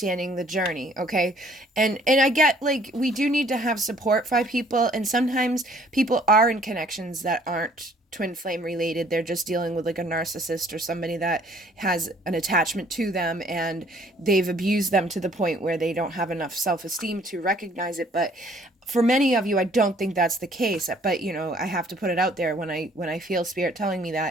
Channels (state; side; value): normal; both; correlation 0.59